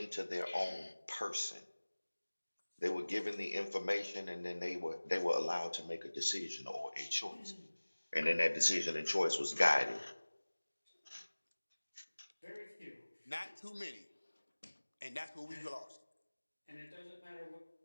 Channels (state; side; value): inverted; both; correlation -1.00